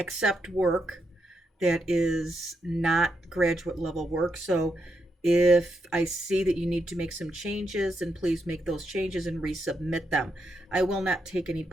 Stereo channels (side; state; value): both; normal; correlation 0.81